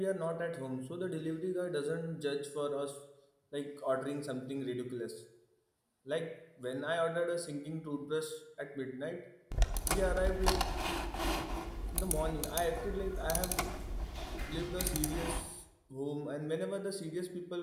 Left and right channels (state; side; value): identical; both; correlation 1.00